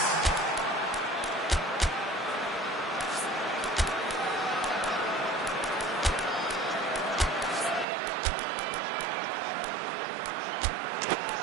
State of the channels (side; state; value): left; drops out; at 7.9 s